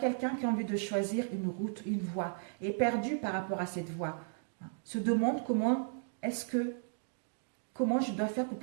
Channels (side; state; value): left; silent; digital silence